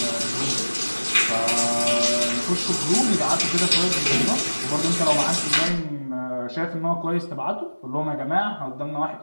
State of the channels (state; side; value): inverted; both; correlation -1.00